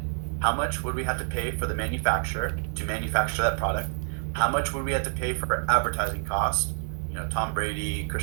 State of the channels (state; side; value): silent; left; 60 dB below the other